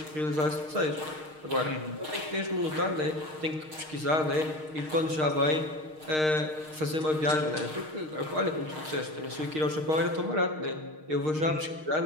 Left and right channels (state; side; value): late; left; 6.5 ms